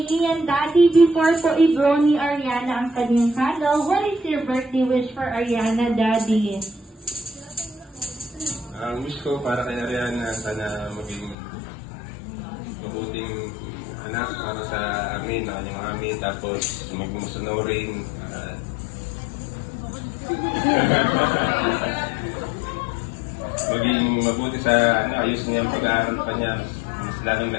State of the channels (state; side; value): drops out; right; at 11.4 s